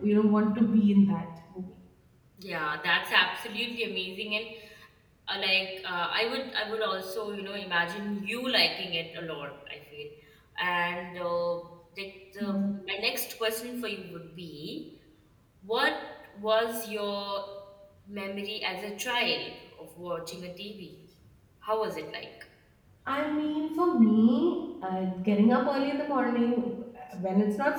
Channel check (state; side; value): identical; both; correlation 1.00